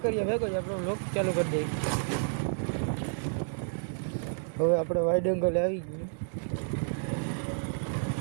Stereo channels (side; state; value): left; silent; digital silence